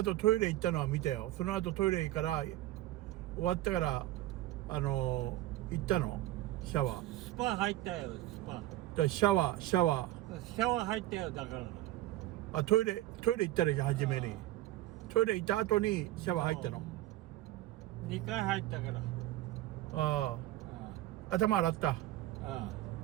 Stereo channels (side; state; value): left; quieter; 15.6 dB